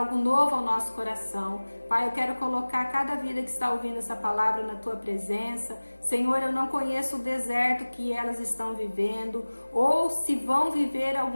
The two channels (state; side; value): inverted; both; correlation -1.00